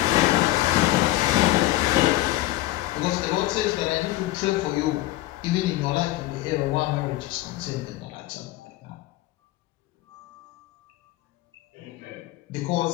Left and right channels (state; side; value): quieter; right; 16.6 dB